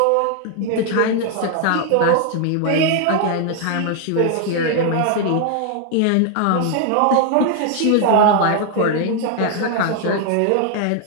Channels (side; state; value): both; different; correlation 0.00